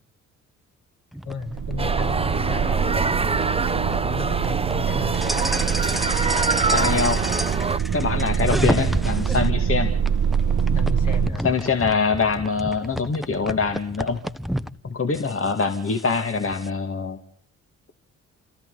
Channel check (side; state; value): both; normal; correlation 0.28